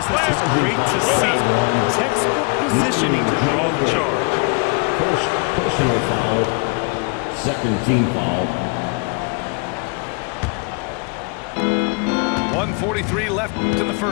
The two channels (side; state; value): right; quieter; 32.0 dB